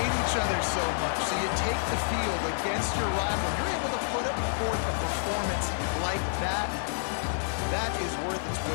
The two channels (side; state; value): right; silent; digital silence